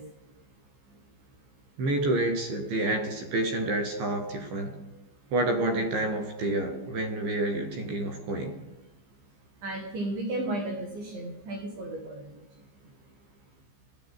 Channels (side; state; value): left; late; 15 ms